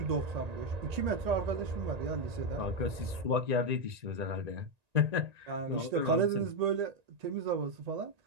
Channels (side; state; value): left; late; 1.9 ms